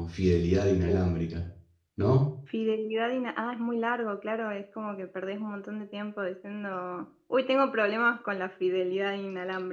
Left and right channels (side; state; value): both; identical; correlation 1.00